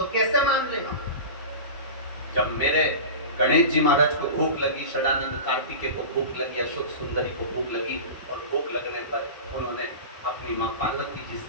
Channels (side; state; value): both; inverted; correlation -0.30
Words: कैसे मान ले हम? जब मेरे गणेश जी महाराज को भूख लगी, षडानंद कार्तिकेय को भूख लगी, अशोक सुंदरी को भूख लगी, और भूख लगने पर उन्होंने अपनी माँ पार्वती जी